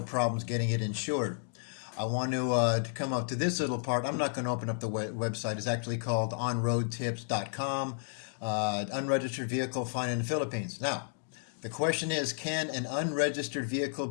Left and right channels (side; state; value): right; silent; digital silence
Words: getting it insured. I want to come up to this little part. I'm not going to open up the website. It's actually called onroadtips.com, unregistered vehicle fine in the Philippines. Now, the question is, can an unregistered vehicle